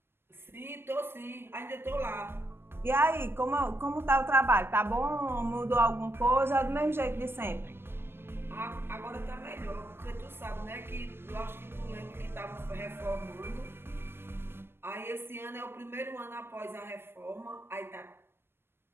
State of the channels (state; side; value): late; left; 0.11 ms